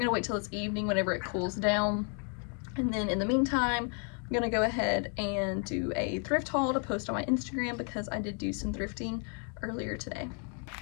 wait till it's evening whenever it cools down. And then in the meantime, I'm gonna go ahead and do a thrift haul to post on my Instagram because I did do some thrifting earlier today.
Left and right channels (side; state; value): right; quieter; 38.8 dB